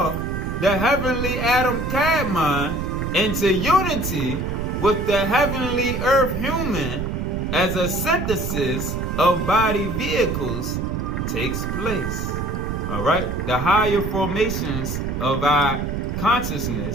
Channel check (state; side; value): noise; right; rumble, 4 dB below the sound